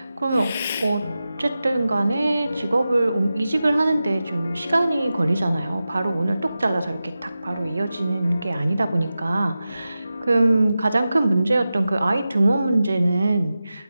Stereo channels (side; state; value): both; inverted; correlation -0.93